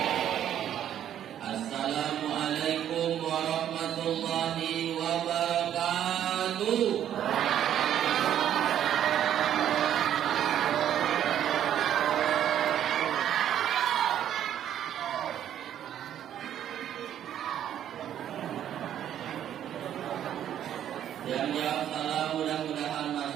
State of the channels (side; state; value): left; quieter; 10.5 dB